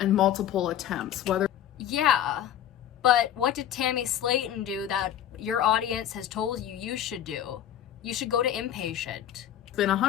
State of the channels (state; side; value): quieter; right; 10.8 dB